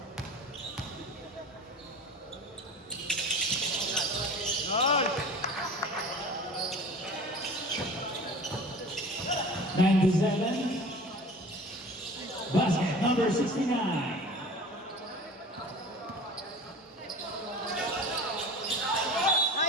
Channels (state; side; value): normal; both; correlation 0.39